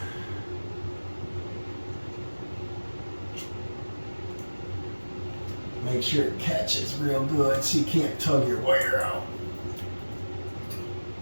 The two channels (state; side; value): inverted; both; correlation -1.00